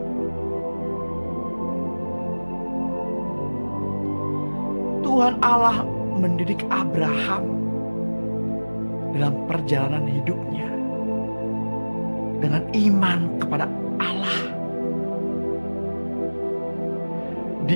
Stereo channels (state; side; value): inverted; both; correlation -1.00